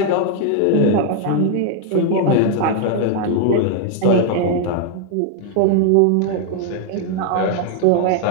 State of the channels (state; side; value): different; both; correlation 0.00